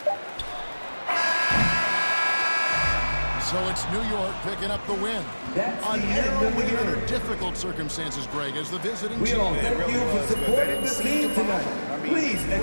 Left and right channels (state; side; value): inverted; both; correlation -1.00